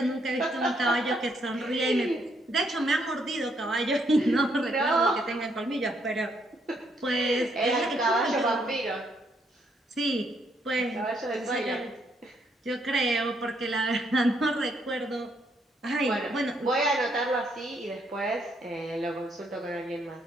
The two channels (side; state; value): both; normal; correlation 0.73